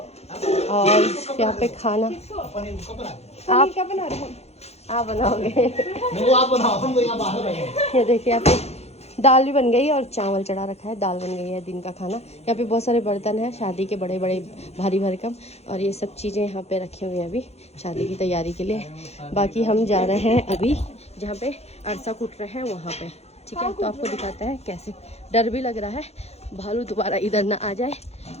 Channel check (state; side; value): late; right; 0.31 ms